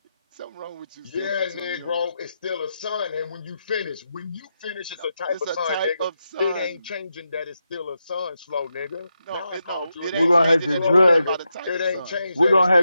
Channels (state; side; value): inverted; both; correlation -0.86